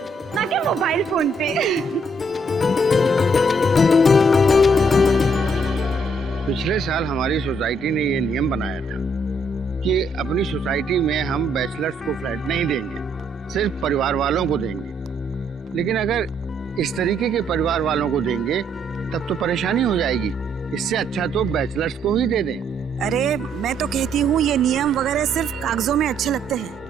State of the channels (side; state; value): both; normal; correlation 0.70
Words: ना कि मोबाइल फोन पे। पिछले साल हमारी सोसाइटी ने ये नियम बनाया था कि अपनी सोसाइटी में हम बैचलर्स को फ्लैट नहीं देंगे, सिर्फ परिवार वालों को देंगे। लेकिन अगर इस तरीके के परिवार वालों को देंगे तब तो परेशानी हो जाएगी। इससे अच्छा तो बैचलर्स को ही दे दें। अरे मैं तो कहती हूँ ये नियम वगैरह सिर्फ कागजों में अच्छे लगते